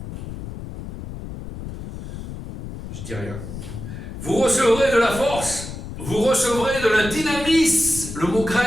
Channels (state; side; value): noise; left; rumble, 10 dB below the sound